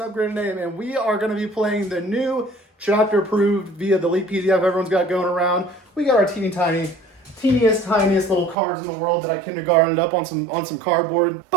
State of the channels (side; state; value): left; drops out; at 8.6 s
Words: upgraded name, and we are going to be playing the new chapter approved via the leak PDF everyone's got going around. We got our teeniest, tiniest little cards in the world that I kindergartened up on some cardboard,